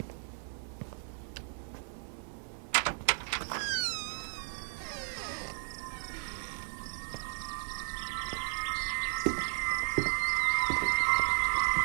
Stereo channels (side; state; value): left; silent; 55 dB below the other